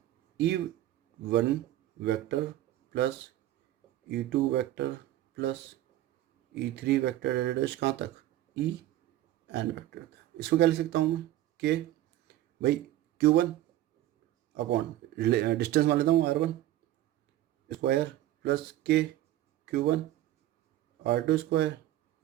E1 vector plus E2 vector plus E3 vector dash कहाँ तक, En वेक्टर तक। इसको क्या लिख सकता हूँ मैं, के भाई Q1 अपॉन डिस्टेंस मान लेता हूँ R1 स्क्वायर प्लस के Q1 R2 स्क्वायर।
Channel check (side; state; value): left; quieter; 14.1 dB